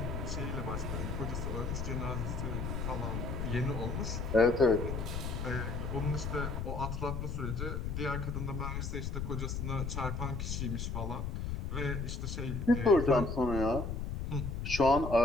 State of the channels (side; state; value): left; noise; rumble, 3 dB below the sound